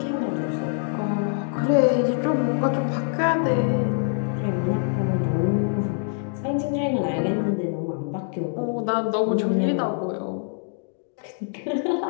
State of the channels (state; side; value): silent; right; 60 dB below the other